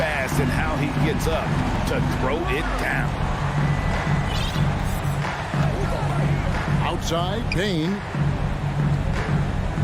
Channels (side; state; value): both; identical; correlation 1.00